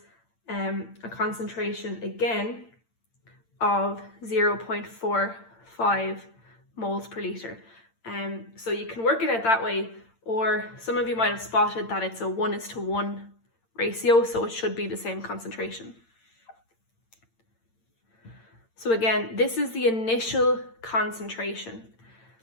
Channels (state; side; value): late; right; 8.8 ms